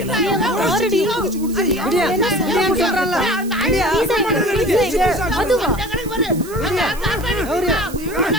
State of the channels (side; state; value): right; noise; hiss, 17 dB below the sound